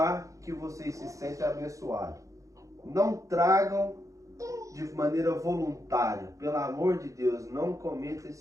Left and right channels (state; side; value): late; left; 0.16 ms